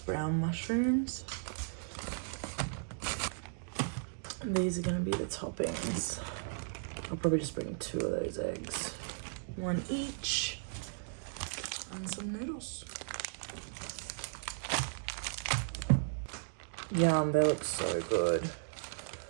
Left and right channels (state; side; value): silent; left; digital silence